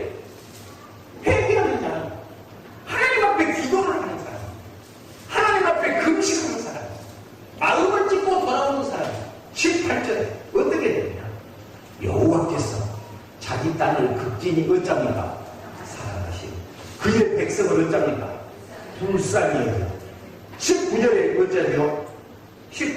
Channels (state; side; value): identical; both; correlation 1.00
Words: 회개하는 자는 하나님 앞에 기도를 하는 사람, 하나님 앞에 금식하는 사람, 마음을 찢고 돌아오는 사람. 18절에 어떻게 되느냐? 여호와께서 자기 땅을 극진히 어쩝니까? 사랑하시고 그의 백성을 어쩝니까? 불쌍히 여겨. 19절에 어쩌죠?